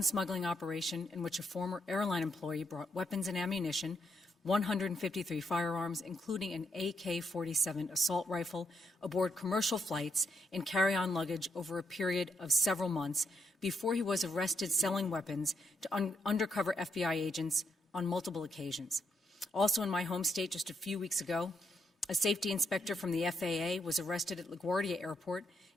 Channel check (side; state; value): both; normal; correlation 0.78